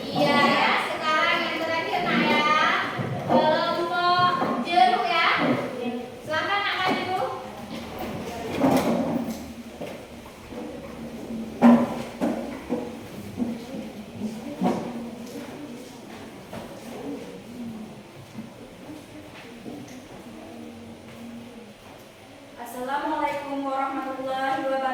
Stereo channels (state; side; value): identical; both; correlation 1.00